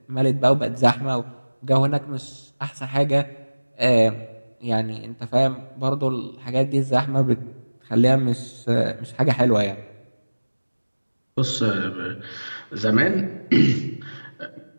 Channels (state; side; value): inverted; both; correlation -1.00